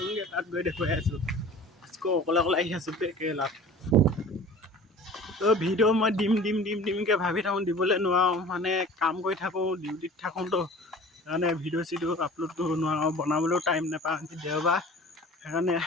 তাত গৈ দেখুৱাই আছোঁ। আকৌ অকলে আহি আছোঁ কেৰেলাত। তো ভিডিঅ' মই দিমকৈ ভাবি থাকোঁ, দিবলৈ নোৱাৰোঁ। মানে কাম কৰি থাকোঁ, ডিউটিত থাকোঁতো, সেইকাৰণে ভিডিঅ' আপলোড কৰিব নোৱাৰোঁ, বনাবলৈও টাইম নাপাওঁ। দেওবাৰ সেইকাৰণে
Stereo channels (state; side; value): normal; both; correlation 0.43